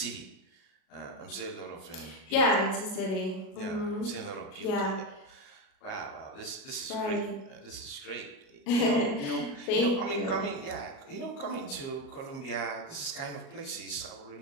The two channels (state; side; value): late; right; 38 ms